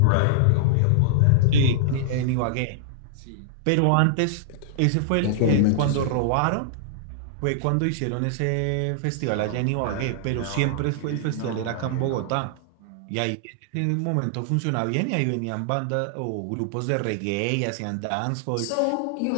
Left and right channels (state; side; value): different; both; correlation -0.01